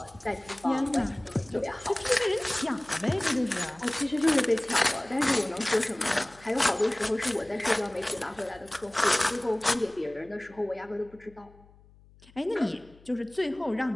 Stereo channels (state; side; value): noise; left; hum, 26 dB below the sound